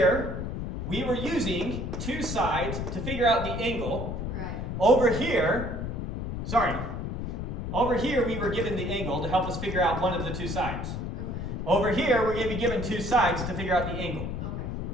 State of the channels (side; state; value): left; noise; rumble, 4 dB below the sound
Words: we were using two sides to figure out the angle. Right. Over here, we were given the angle to help us figure out one of the two sides. Okay. Over here, we're going to be given two sides to figure out the angle. Okay.